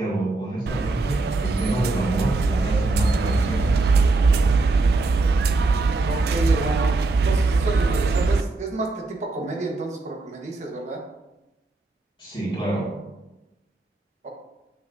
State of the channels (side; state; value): left; quieter; 3.3 dB